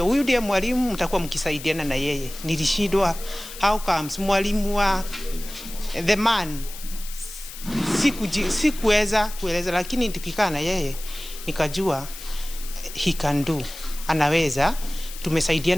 huyu ndiye mwalimu, mtakuwa mkisaidiana na yeye. Nilishindwa how comes mwalimu wa the man sikuweza kueleza, lakini tukikaa na yeye nikajua he can do, anaweza.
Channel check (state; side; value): noise; left; hiss, 13 dB below the sound